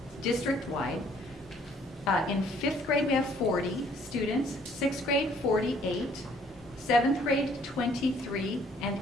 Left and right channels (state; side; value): normal; both; correlation 0.61